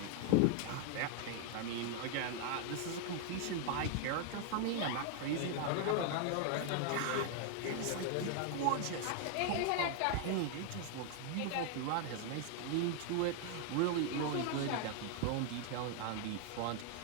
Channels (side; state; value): both; different; correlation 0.00